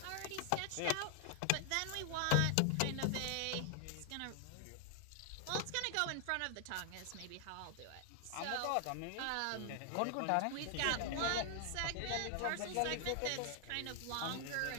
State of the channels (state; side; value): different; both; correlation 0.00